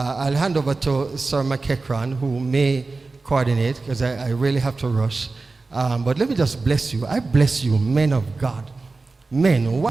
hand over to Sir McEachran, who may coordinate, because I really have to rush. But let me just bless you. I bless you, men of God, men,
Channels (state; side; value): quieter; left; 3.7 dB